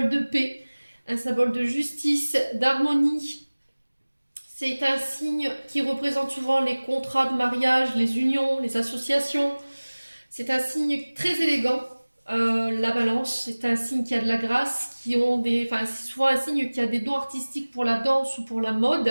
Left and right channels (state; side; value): inverted; both; correlation -1.00